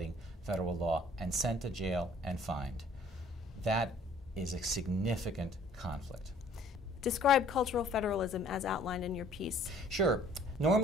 federal law and sent to jail and fined. That is a significant conflict. Describe cultural federalism as outlined in your piece. Sure.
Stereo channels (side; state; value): both; normal; correlation 0.56